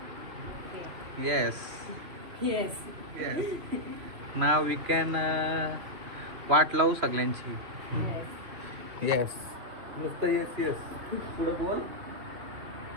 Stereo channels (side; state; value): left; late; 3.1 ms